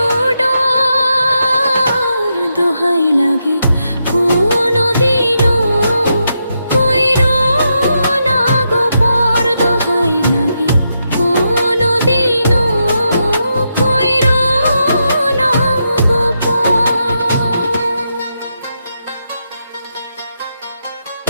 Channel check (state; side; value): inverted; both; correlation -0.83